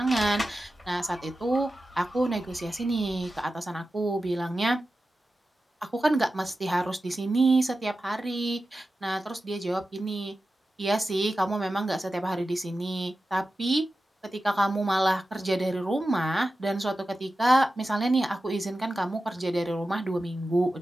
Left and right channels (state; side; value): normal; both; correlation 0.93